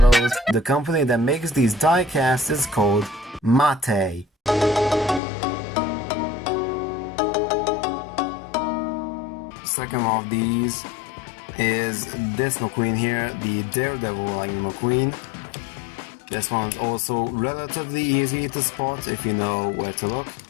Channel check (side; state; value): right; drops out; at 5.2 s